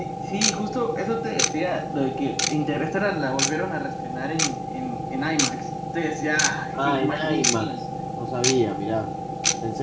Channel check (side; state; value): both; identical; correlation 1.00